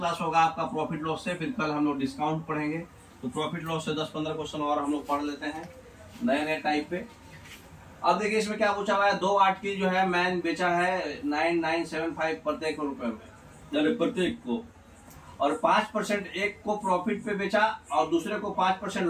होगा आपका प्रॉफिट लॉस से, फिर कल हम लोग डिस्काउंट पढ़ेंगे। तो प्रॉफिट लॉस से 10-15 क्वेश्चन और हम लोग पढ़ लेते हैं नए नए टाइप पे। अब देखिए इसमें क्या पूछा हुआ है। 2 आर्टिकल जो है मैन बेचा है 9975 प्रत्येक रुपए में, प्रत्येक को, और 5% एक को प्रॉफिट पे बेचा और दूसरे को 5%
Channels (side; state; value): both; identical; correlation 1.00